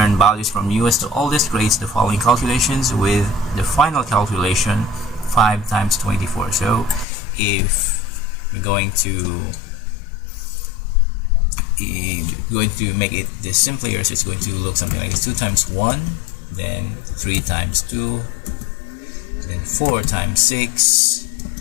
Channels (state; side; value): drops out; right; at 7.1 s